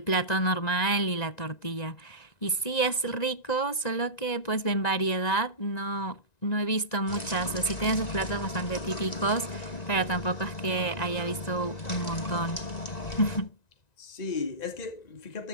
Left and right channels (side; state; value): right; late; 1.9 ms